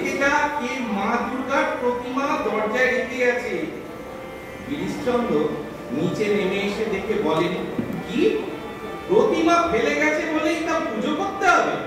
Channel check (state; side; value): identical; both; correlation 1.00